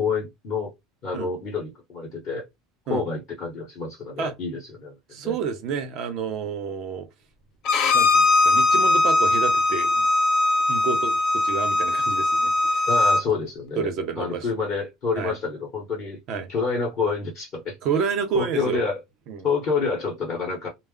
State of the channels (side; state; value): both; normal; correlation 0.68